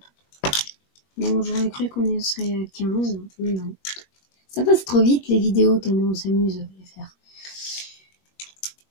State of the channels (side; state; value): right; late; 21 ms